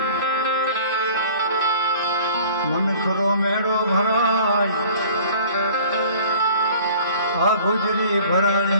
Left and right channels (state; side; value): inverted; both; correlation -0.49